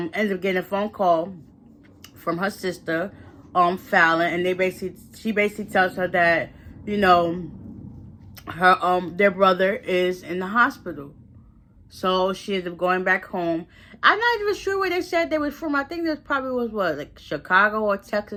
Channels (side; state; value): both; identical; correlation 1.00